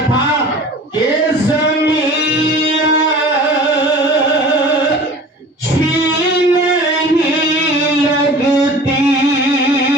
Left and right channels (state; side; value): normal; both; correlation 0.41